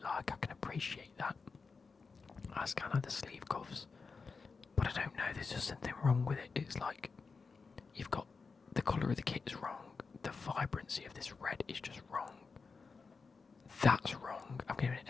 like. I can appreciate that. That's kind of the sleeve cuffs. But I don't know. There's just something wrong with it. It's like you've got the colour of the kit is wrong. The vibrancy of this red is just wrong. That's wrong. I'm giving it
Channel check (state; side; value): quieter; right; 4.7 dB